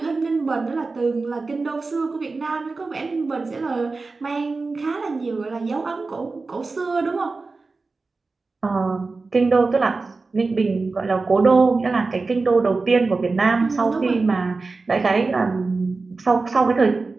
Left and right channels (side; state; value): left; quieter; 3.9 dB